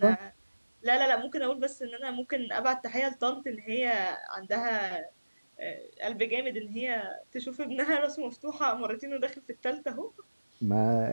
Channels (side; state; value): both; inverted; correlation -1.00